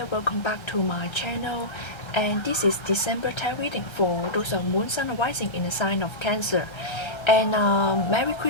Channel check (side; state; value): right; late; 1.3 ms